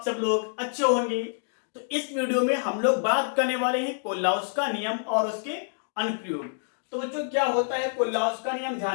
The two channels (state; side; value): silent; right; digital silence